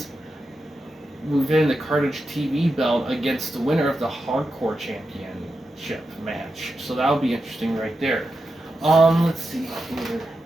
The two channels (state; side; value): normal; both; correlation 0.89